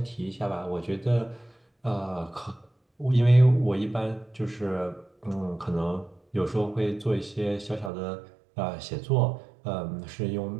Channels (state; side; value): drops out; left; at 7.9 s